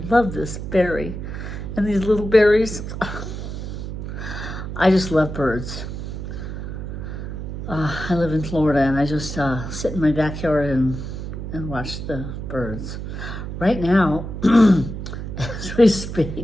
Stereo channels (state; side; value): noise; right; hum, 7 dB below the sound